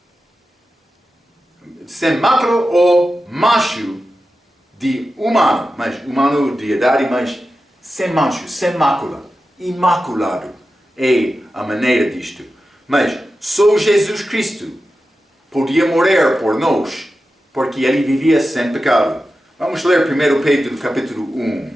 Sem mácula ou macho de humano, mas humano de idade, mas sem mancho, sem mácula, imaculado é a maneira disto. Mas só Jesus Cristo podia morrer por nós, porque ele vivia sem pecado. Vamos ler 1 Pedro capítulo 1.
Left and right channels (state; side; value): normal; both; correlation 0.92